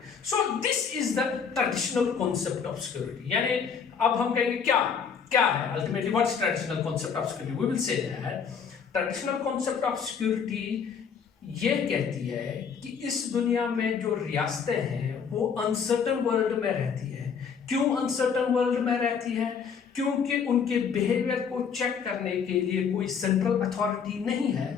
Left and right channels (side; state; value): right; quieter; 6.6 dB